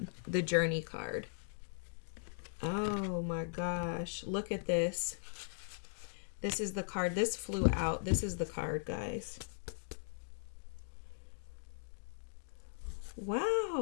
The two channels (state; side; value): silent; right; digital silence